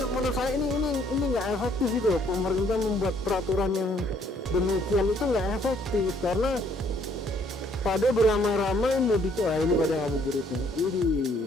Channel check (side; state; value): both; normal; correlation 0.64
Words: menurut saya ini nggak efektif itu. Pemerintah membuat peraturan yang demikian itu nggak efektif, karena pada beramai-ramai mudik, ini pada ngabuburitnya, ini